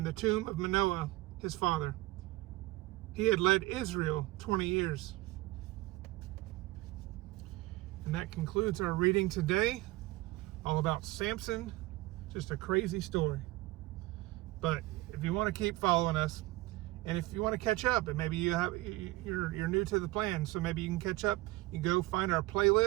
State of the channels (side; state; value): left; quieter; 19.8 dB